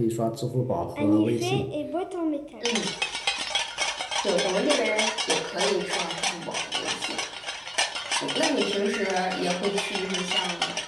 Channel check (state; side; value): identical; both; correlation 1.00